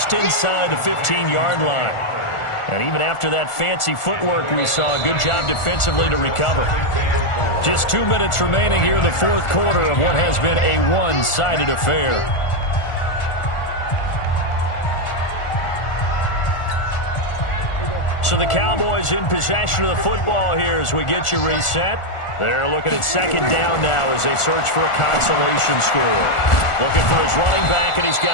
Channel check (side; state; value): right; late; 1.4 ms